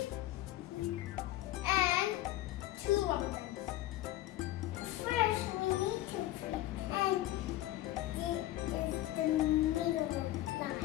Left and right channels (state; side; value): quieter; right; 15.3 dB